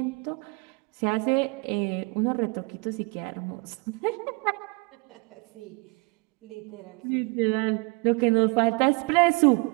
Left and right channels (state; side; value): quieter; left; 29.9 dB